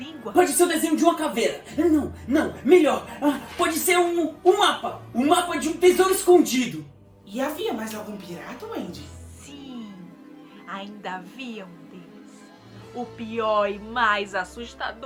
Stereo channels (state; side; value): identical; both; correlation 1.00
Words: Pode ser o desenho de uma caveira. Não, melhor. Pode ser um mapa. Um mapa de um tesouro escondido. E havia mais algum pirata, Wendy? Sim, ainda havia um deles. O pior e mais